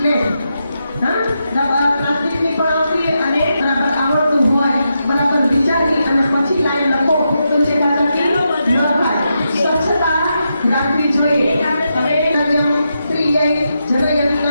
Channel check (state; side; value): inverted; both; correlation -0.85